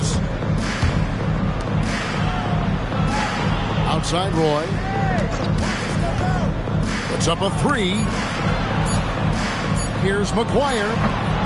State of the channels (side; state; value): both; identical; correlation 1.00